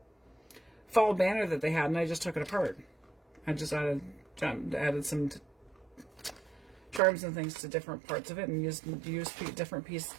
fall banner that they had, and I just took it apart. I just added some charms and things to different parts of it, and used different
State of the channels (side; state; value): left; drops out; at 7.0 s